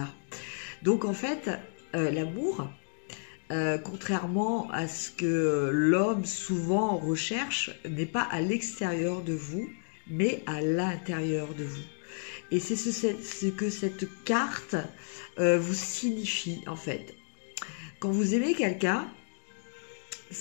Donc en fait, l'amour, contrairement à ce que l'homme souvent recherche, n'est pas à l'extérieur de vous, mais à l'intérieur de vous. Et c'est ce que cette carte vous signifie, en fait. Quand vous aimez quelqu'un,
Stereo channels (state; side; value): silent; right; 57 dB below the other